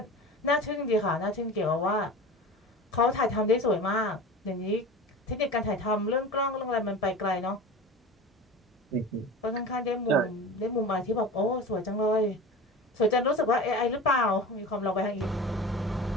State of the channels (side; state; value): both; normal; correlation 0.33